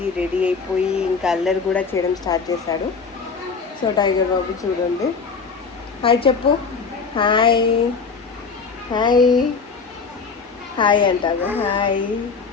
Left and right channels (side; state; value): right; quieter; 5.1 dB